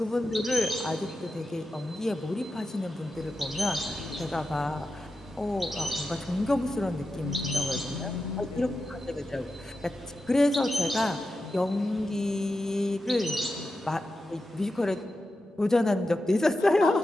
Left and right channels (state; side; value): normal; both; correlation 0.90